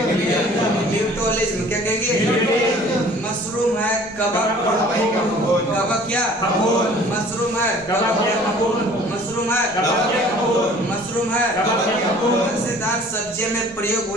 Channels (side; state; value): right; noise; rumble, 25 dB below the sound